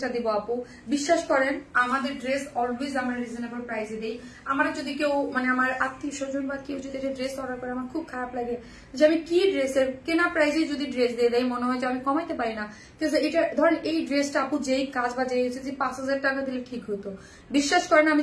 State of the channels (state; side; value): identical; both; correlation 1.00